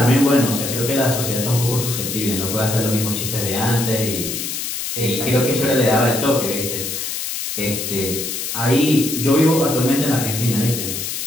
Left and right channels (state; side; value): noise; left; hiss, 4 dB below the sound